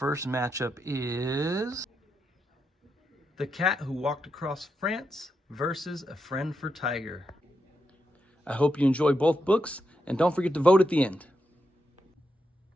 matchup is The Cat Who Walked Across France versus A Friend for Tiger. I hope you enjoy both books, and don't forget to vote at the end.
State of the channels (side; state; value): both; normal; correlation 0.84